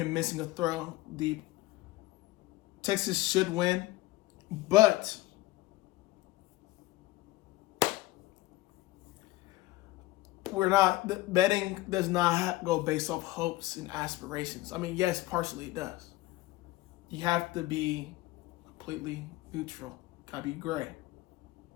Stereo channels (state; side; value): quieter; right; 18.4 dB